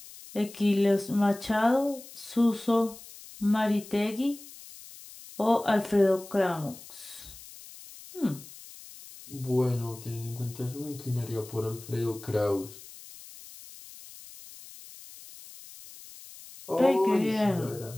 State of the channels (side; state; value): left; noise; hiss, 17 dB below the sound